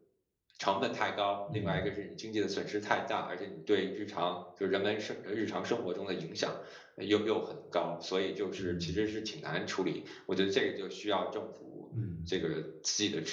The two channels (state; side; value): identical; both; correlation 1.00